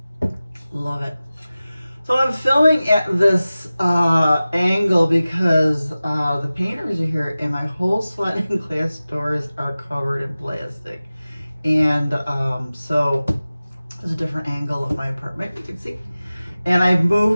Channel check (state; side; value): inverted; both; correlation -0.96